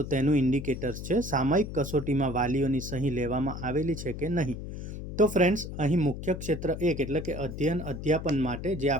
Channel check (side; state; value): left; noise; hum, 8 dB below the sound